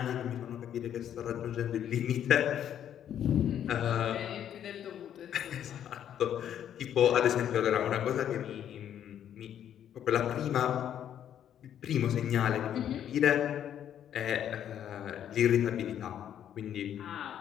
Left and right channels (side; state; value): right; quieter; 10.0 dB